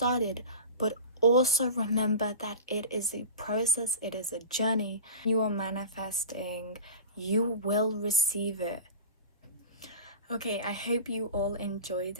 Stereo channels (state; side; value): inverted; both; correlation -0.31